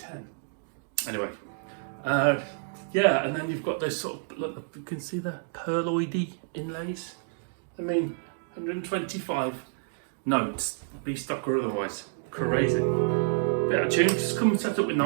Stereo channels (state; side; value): silent; left; digital silence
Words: Anyway, yeah, and then you've got those sort of, look, you can see the pearloidy inlays. I mean, 125 notes, B stock or otherwise. Crazy. Bit out of tune, just come set up with